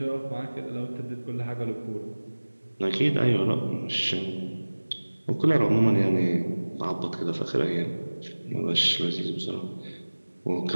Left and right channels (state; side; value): inverted; both; correlation -1.00